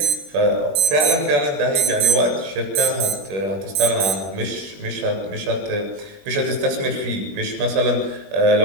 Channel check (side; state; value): left; late; 21 ms